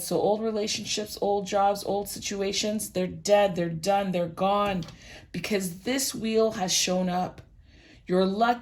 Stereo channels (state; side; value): identical; both; correlation 1.00